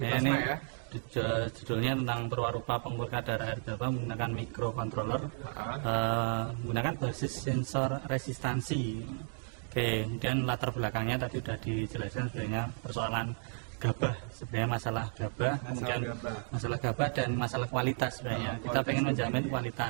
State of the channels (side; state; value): left; silent; 56 dB below the other